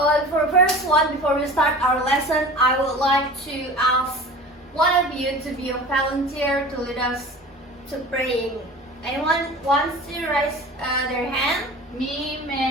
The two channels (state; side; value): normal; both; correlation 0.38